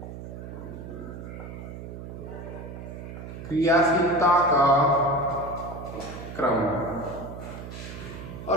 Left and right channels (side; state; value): right; noise; hum, 10 dB below the sound